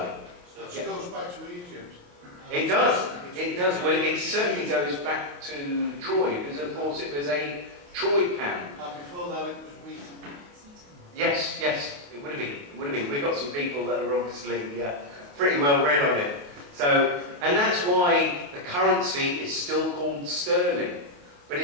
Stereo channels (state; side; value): late; left; 28 ms